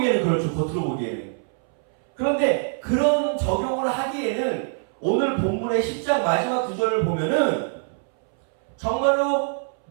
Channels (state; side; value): silent; left; 63 dB below the other